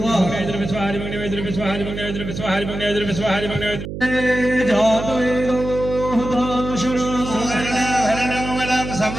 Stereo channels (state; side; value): noise; right; hum, 7 dB below the sound